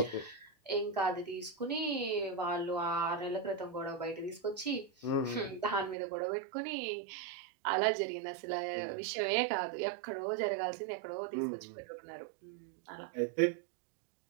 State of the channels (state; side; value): drops out; left; at 6.0 s